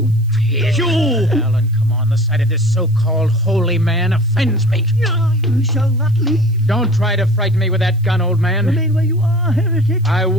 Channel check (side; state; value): right; noise; hiss, 30 dB below the sound